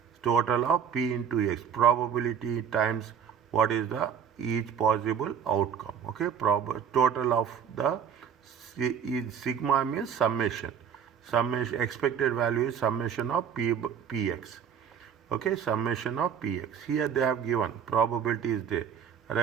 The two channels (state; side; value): quieter; left; 7.8 dB